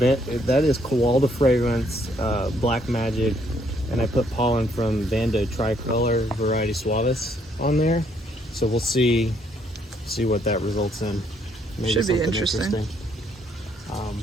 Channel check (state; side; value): normal; both; correlation 0.69